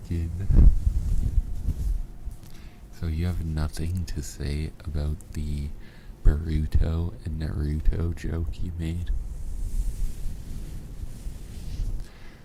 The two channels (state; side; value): identical; both; correlation 1.00